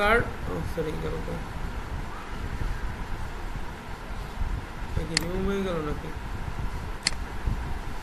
sorry গেল তো, কি রিমুভ হয়ে গেল নাকি,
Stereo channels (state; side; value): identical; both; correlation 1.00